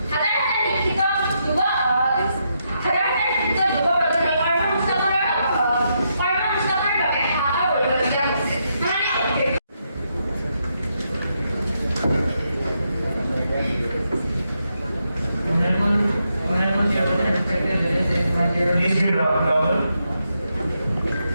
Please be louder.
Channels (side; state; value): both; inverted; correlation -0.81